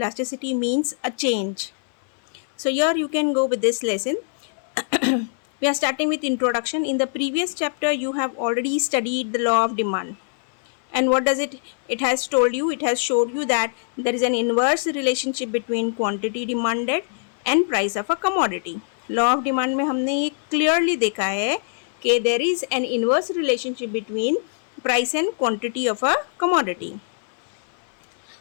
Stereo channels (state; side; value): silent; right; 59 dB below the other